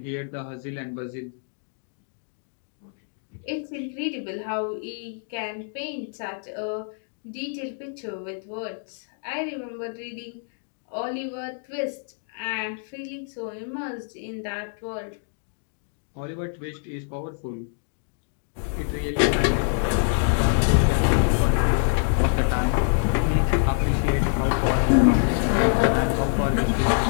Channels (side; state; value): right; silent; 59 dB below the other